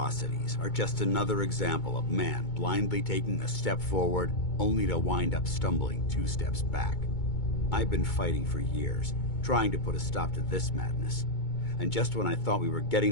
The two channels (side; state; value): right; late; 2.2 ms